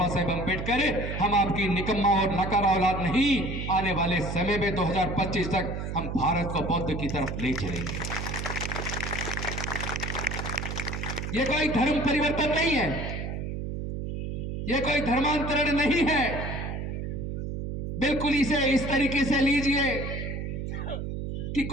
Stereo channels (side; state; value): right; noise; hum, 4 dB below the sound